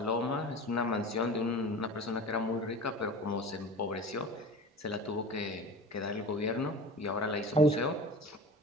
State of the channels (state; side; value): normal; both; correlation 0.36